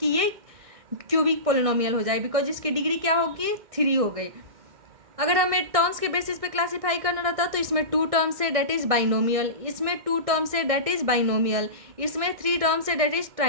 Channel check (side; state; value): left; late; 1.6 ms